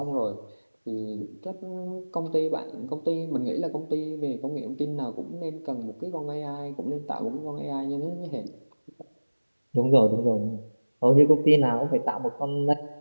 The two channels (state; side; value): inverted; both; correlation -1.00